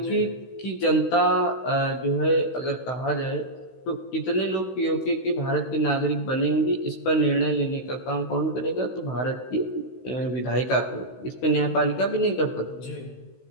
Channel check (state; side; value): late; right; 16 ms